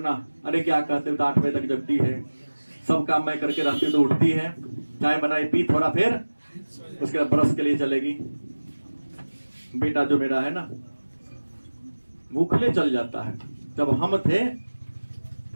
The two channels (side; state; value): both; inverted; correlation -1.00